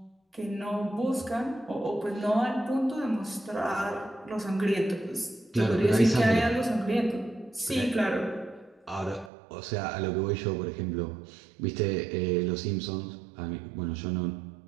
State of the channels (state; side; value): drops out; left; at 9.3 s